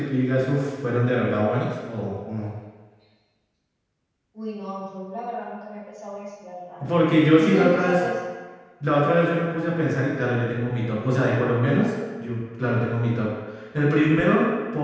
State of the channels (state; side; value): identical; both; correlation 1.00